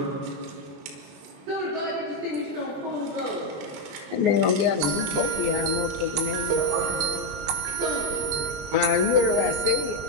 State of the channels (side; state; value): left; late; 21 ms